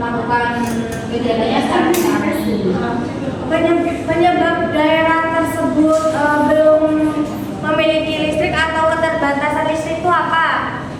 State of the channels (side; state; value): both; identical; correlation 1.00